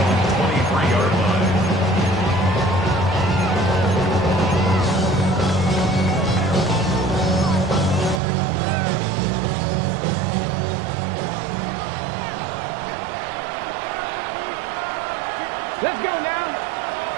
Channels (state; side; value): drops out; left; at 8.2 s